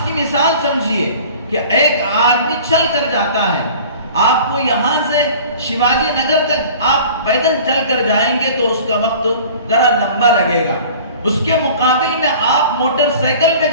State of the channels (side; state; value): both; inverted; correlation -0.44